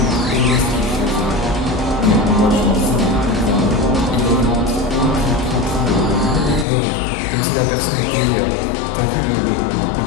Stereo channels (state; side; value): drops out; right; at 6.7 s